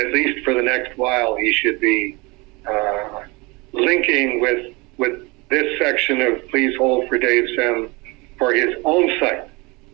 least for the next while he should be linking with this section of Please Hold for Dave Sim for his own site.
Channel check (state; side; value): quieter; left; 26.0 dB